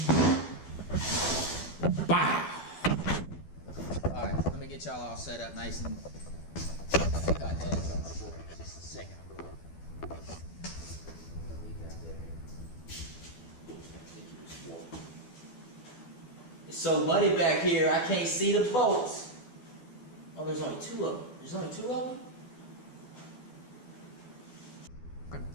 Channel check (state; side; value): late; right; 12 ms